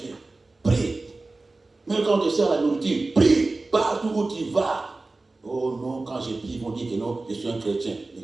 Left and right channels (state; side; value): quieter; left; 3.3 dB